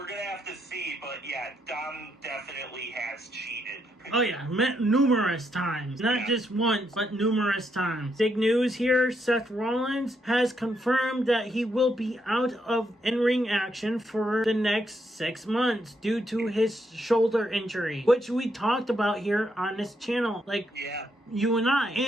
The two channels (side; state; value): both; normal; correlation 0.78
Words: gonna have to see. But yeah, Dom definitely has cheated. Oh yeah, numerous times. Not just once, but numerous times. Big news here, Seth Rollins has confirmed that he will be out of in-ring action for the next 6 months due to his shoulder injury, which we talked about here on this channel. You and I.